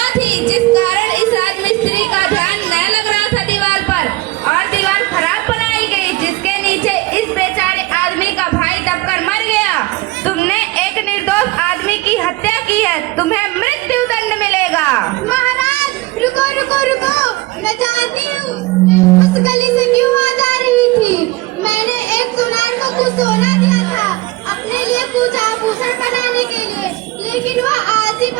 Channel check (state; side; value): quieter; left; 20.2 dB